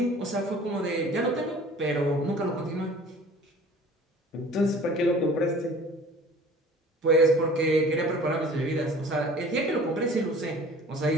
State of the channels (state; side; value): normal; both; correlation 0.46